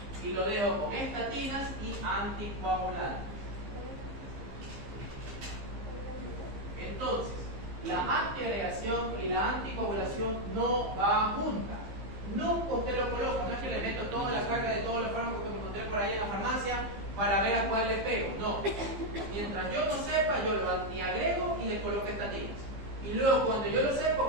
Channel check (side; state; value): left; late; 15 ms